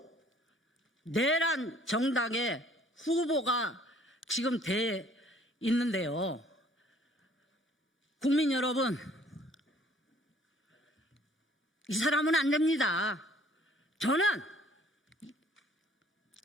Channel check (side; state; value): both; normal; correlation 0.58